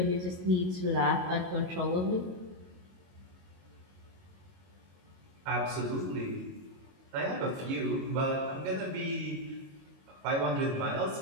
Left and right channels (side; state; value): left; late; 22 ms